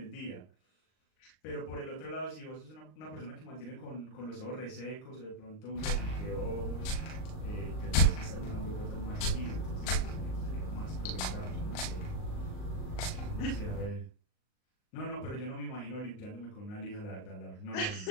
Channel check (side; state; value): right; late; 38 ms